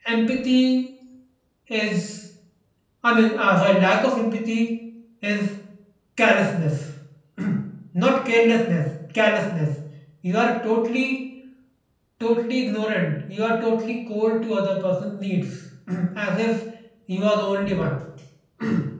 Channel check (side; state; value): both; identical; correlation 1.00